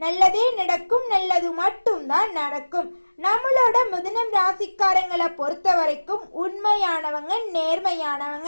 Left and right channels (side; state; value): both; inverted; correlation -1.00